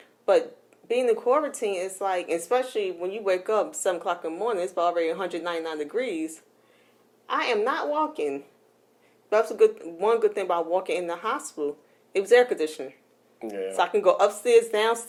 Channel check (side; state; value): both; identical; correlation 1.00